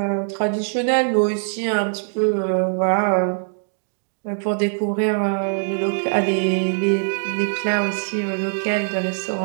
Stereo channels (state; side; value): silent; left; digital silence